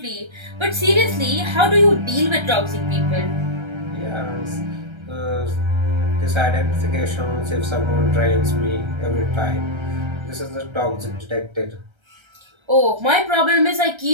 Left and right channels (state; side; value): late; left; 1.3 ms